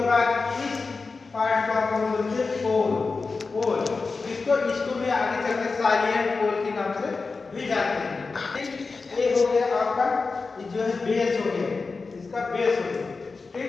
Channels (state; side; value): quieter; right; 4.2 dB